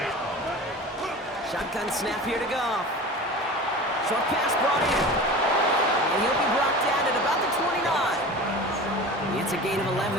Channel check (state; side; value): normal; both; correlation 0.35